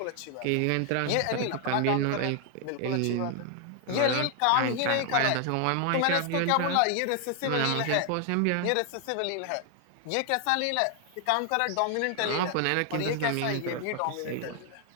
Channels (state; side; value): different; both; correlation 0.00